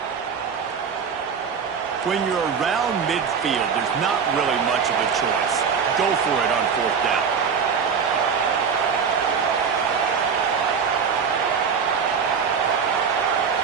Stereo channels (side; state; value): left; quieter; 6.4 dB